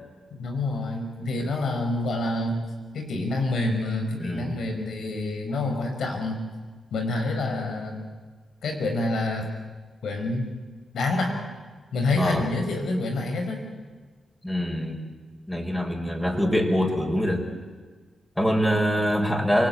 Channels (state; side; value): normal; both; correlation 0.83